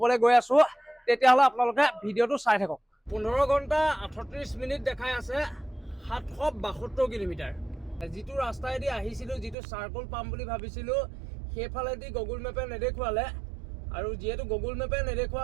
গৈ আছো তেতিয়াহ'লে আপোনালোকে ভিডিঅ'টো চাই থাকক 15 ঘণ্টা 38 মিনিট দেখাই আছে 772 কিলোমিটাৰ যিটো ৰাস্তাইদি আহিছিলো যিটো চাৰ্কল পাম বুলি ভাবিছিলো সেইফালেদি গুগল মেপে নেদেখুৱালে আৰু যেহেতু গুগল মেপে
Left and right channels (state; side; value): drops out; left; at 9.6 s